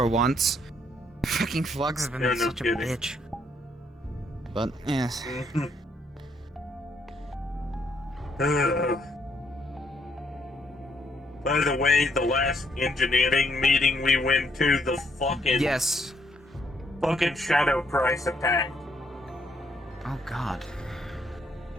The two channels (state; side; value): normal; both; correlation 0.72